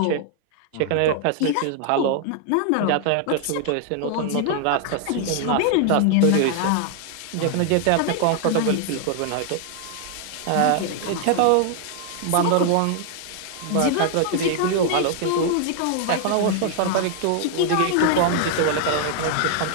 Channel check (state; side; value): different; both; correlation 0.00